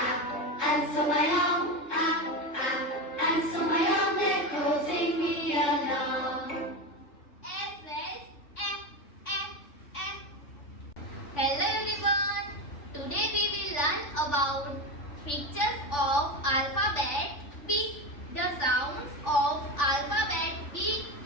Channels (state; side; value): late; right; 3.4 ms